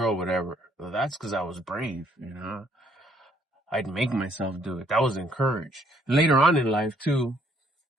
whatever. Well, that's because I was brave, I'd make myself do it. That was encouraged. Later on in life too.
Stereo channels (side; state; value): both; normal; correlation 0.66